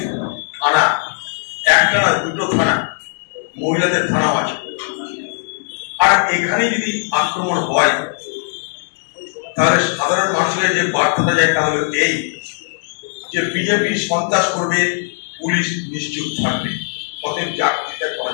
থানা, একটা না দুটো থানা, মহিলাদের থানাও আছে। আর এখানে যদি আক্রমণ হয় তাহলে সাধারণ মানুষের যে বার্তাটা যায় তা হলো এই যে বিজেপি সন্ত্রাস করবে, পুলিশ নিশ্চুপ থাকবে, অতএব চাকরিটা করা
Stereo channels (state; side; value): silent; right; digital silence